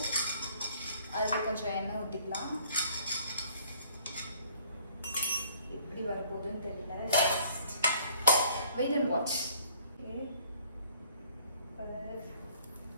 அதில் கொஞ்சம் எண்ணெய் ஊற்றிக்கலாம். எப்படி வரப்போகுதுன்னு தெரியல. Wait and watch.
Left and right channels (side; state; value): both; inverted; correlation -0.59